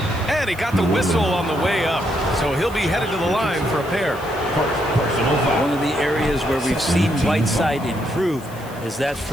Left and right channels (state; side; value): noise; left; hiss, 21 dB below the sound